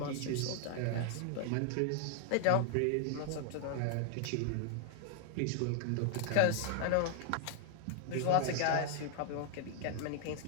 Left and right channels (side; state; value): both; different; correlation 0.00